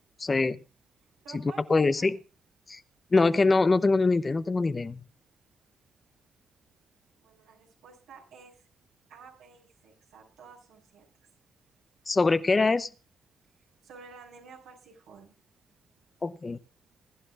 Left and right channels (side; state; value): right; quieter; 3.1 dB